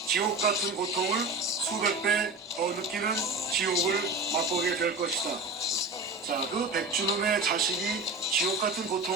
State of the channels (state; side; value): quieter; left; 3.1 dB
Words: 지옥 같은 고통을 수백 배 더 느끼는 지옥을 맛보게 될 것이다. 자, 그 백준음의 자식이 지옥 같은